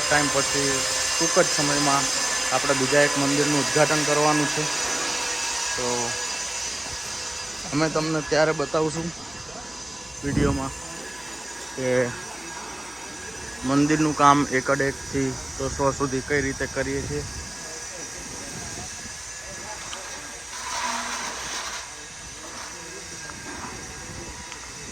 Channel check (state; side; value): noise; left; hum, 24 dB below the sound